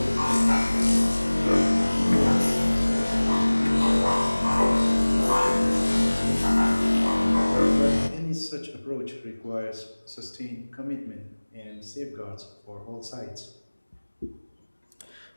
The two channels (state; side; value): inverted; both; correlation -1.00